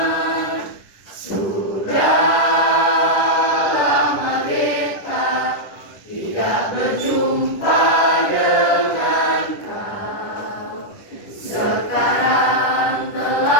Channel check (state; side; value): late; right; 10 ms